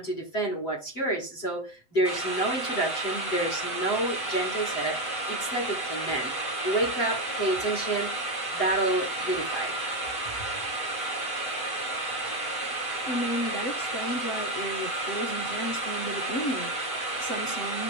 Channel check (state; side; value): late; right; 7.9 ms